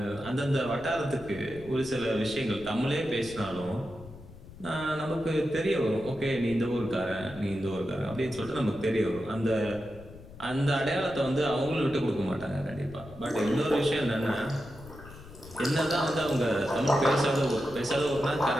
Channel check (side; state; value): left; noise; rumble, 17 dB below the sound